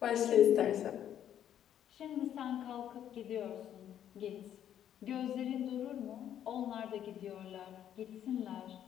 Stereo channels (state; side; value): quieter; right; 10.3 dB